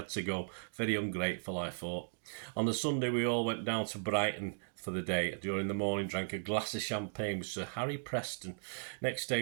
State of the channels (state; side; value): silent; left; digital silence